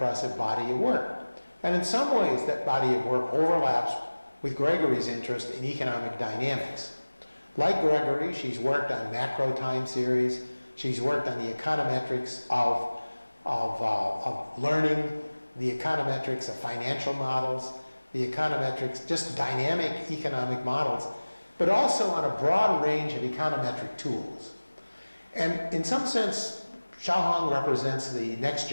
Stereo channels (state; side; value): inverted; both; correlation -1.00